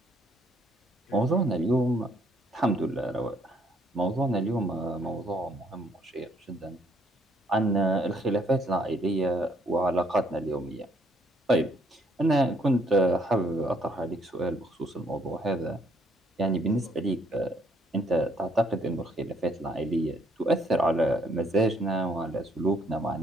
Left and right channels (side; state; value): both; normal; correlation 0.67